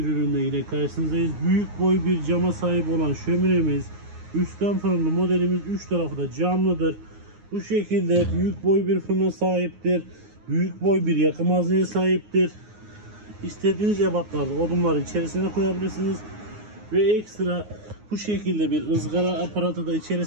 ürünle yine karşınızdayız. Büyük boy bir cama sahip olan şöminemiz, üstten fırınlı modelimiz, 3 tarafı da camlıdır. Bu şekilde büyük boy bir fırına sahiptir. Büyük boy bir yakım hazneye sahiptir. İstediğiniz ebatlarda odunları içerisine koyabilirsiniz. Ve ekstra bu şekilde bir ızgara aparatı da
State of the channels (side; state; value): left; late; 9.6 ms